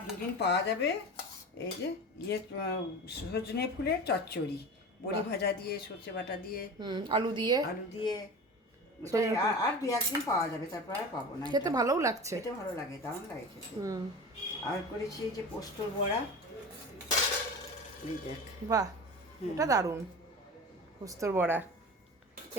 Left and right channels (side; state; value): both; normal; correlation 0.33